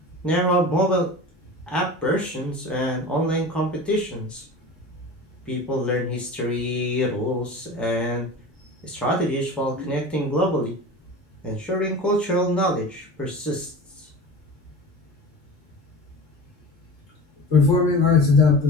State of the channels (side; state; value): both; normal; correlation 0.35